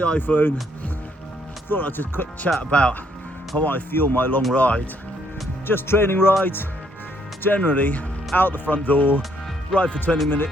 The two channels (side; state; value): both; normal; correlation 0.70